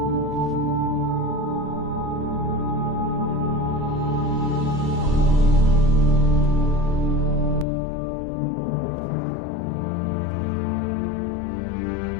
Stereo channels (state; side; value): drops out; right; at 7.7 s